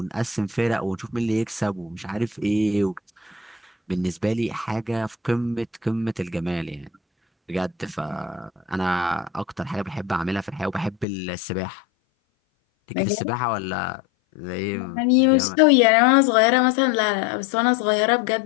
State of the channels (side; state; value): right; drops out; at 11.1 s